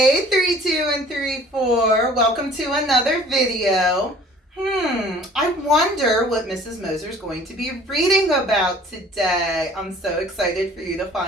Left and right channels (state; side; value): normal; both; correlation 0.51